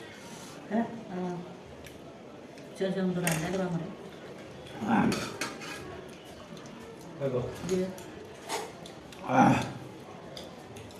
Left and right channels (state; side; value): identical; both; correlation 1.00